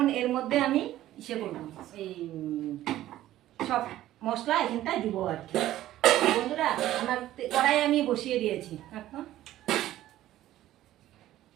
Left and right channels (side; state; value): left; quieter; 14.0 dB